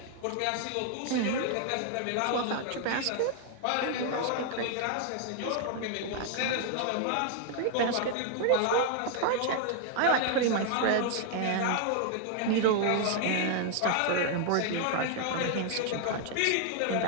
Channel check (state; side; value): different; both; correlation 0.00